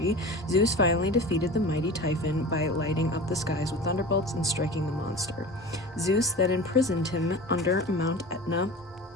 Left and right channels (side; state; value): both; normal; correlation 0.34